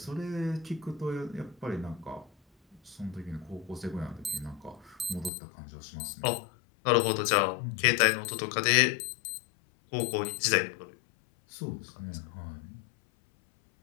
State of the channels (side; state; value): right; drops out; at 5.3 s